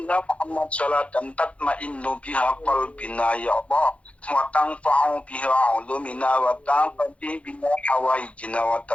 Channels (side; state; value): right; late; 0.063 ms